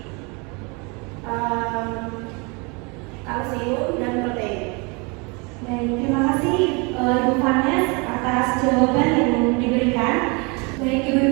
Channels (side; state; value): left; quieter; 30.2 dB